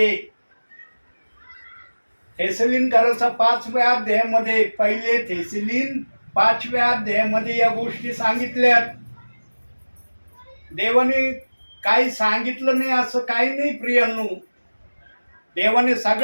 थेसलीनकराचा 5व्या अध्यायामध्ये, पहिले थेसलीन 5व्या अध्यायामध्ये या गोष्टी सांगितल्यात. देवाने काही सांगितलं नाही असं काही नाही प्रियांनो. देवाने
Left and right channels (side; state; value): both; inverted; correlation -1.00